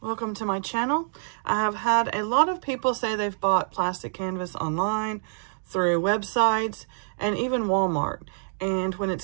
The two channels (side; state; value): left; silent; digital silence